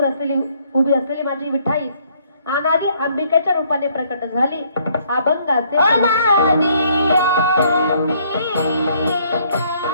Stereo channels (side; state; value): both; inverted; correlation -0.66